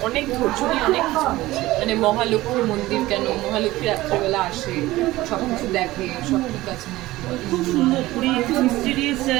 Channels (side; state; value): left; quieter; 17.6 dB